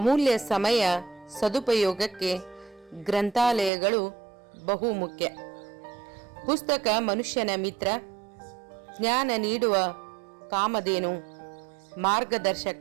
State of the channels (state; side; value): drops out; left; at 3.7 s